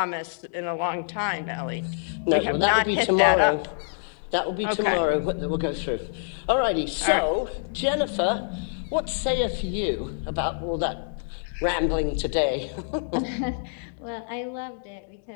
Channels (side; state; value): right; silent; digital silence